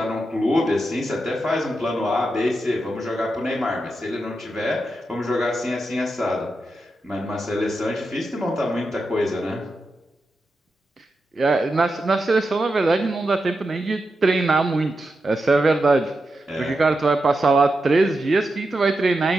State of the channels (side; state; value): both; normal; correlation 0.88